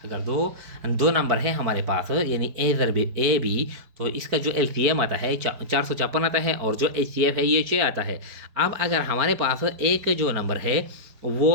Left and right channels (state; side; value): late; left; 4.5 ms